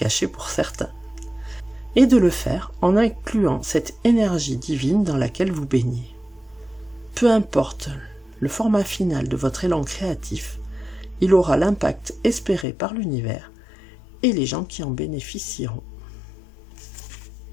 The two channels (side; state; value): right; drops out; at 12.7 s